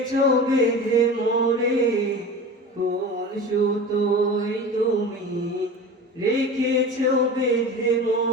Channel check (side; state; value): both; normal; correlation 0.34